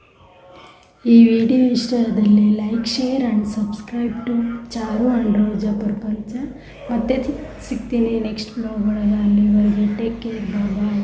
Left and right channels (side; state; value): both; identical; correlation 1.00